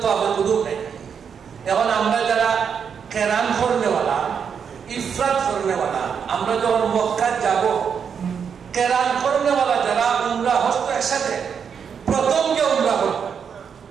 তাওয়াফে কুদুম নেই। এখন আমরা যারা কেরান করনেওয়ালা, ইফরাদ করনেওয়ালা, আমরা যখন মক্কা যাব, কেরান করনেওয়ালা যারা উমরা হজ তো একসাথে, প্রথম যে উমরা করবে,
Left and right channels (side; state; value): left; quieter; 7.0 dB